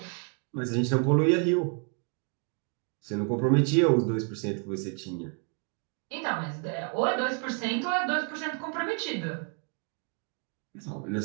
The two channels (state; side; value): quieter; left; 38.7 dB